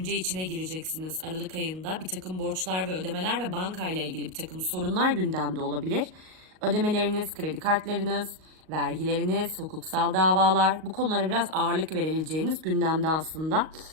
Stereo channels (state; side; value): late; left; 38 ms